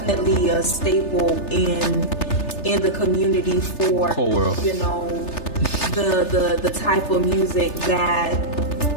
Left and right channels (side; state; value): right; late; 3.3 ms